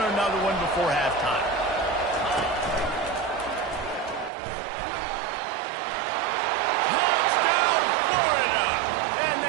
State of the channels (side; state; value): left; drops out; at 4.3 s